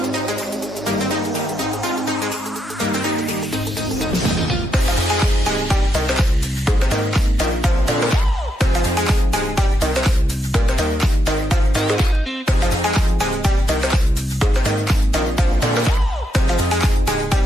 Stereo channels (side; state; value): both; normal; correlation 0.81